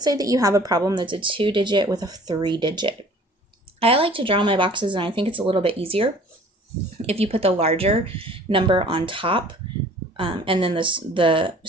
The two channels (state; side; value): normal; both; correlation 0.50